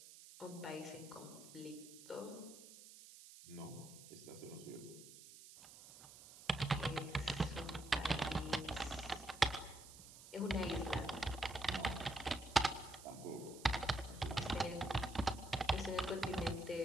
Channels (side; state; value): right; noise; hiss, 17 dB below the sound